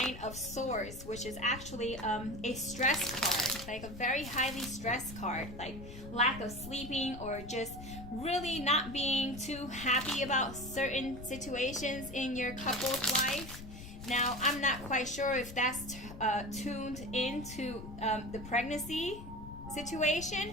of Swords, which is actually a stress card, like a very highly stressed card, like lack of sleeping or just really not being too happy about certain situations in your couple's life. Now, I'm not quite sure if that's tuned into the pregnancy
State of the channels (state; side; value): noise; left; rumble, 12 dB below the sound